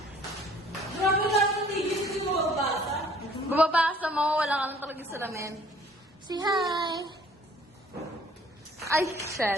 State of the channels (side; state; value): both; normal; correlation 0.55